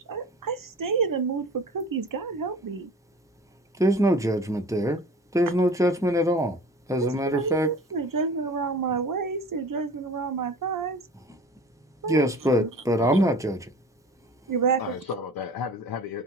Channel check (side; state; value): both; normal; correlation 0.41